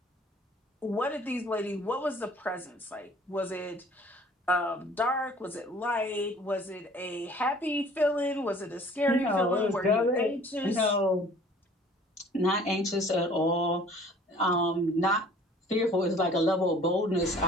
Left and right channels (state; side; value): normal; both; correlation 0.52